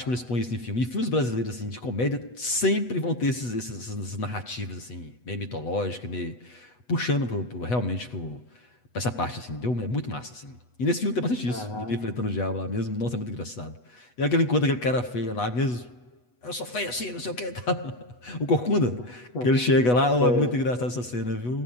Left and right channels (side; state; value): right; late; 8.2 ms